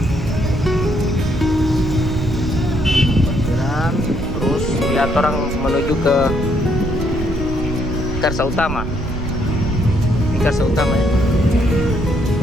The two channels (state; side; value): noise; right; rumble, 7 dB below the sound